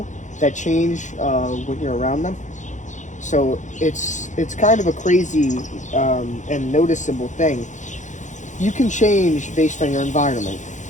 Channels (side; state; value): right; late; 0.35 ms